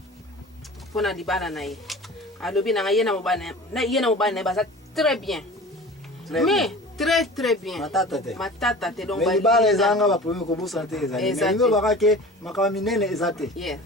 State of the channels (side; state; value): both; normal; correlation 0.39